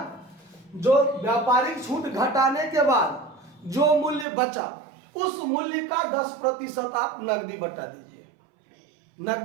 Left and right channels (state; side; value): drops out; left; at 4.2 s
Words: जो व्यापारिक छूट घटाने के बाद जो मूल्य बचा उस मूल्य का 10% आप नगदी बट्टा दीजिए।